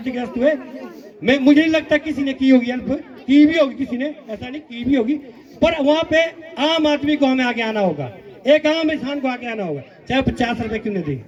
हुए, मुझे नहीं लगता किसी ने की होगी हेल्प, की भी होगी किसी ने, ऐसा नहीं की भी होगी, पर वहां पे आम आदमी को हमें आगे आना होगा, एक आम इंसान को आगे आना होगा, चाहे 50 रुपए क्यों नहीं दे।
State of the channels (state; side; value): identical; both; correlation 1.00